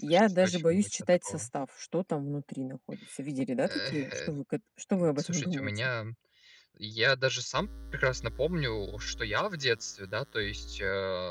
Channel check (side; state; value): both; identical; correlation 1.00